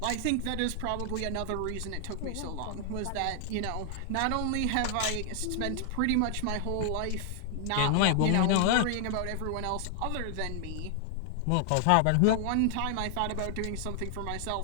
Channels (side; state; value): both; different; correlation 0.00